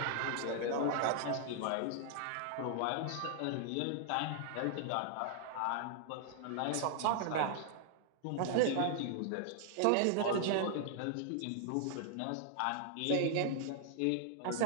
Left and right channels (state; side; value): different; both; correlation 0.00